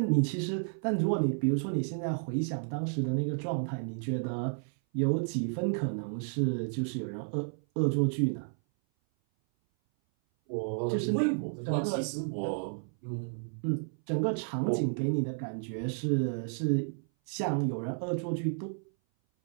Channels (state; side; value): silent; left; 57 dB below the other